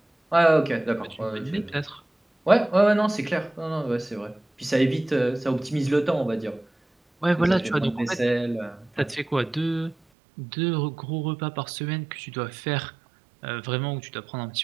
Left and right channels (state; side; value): drops out; left; at 10.0 s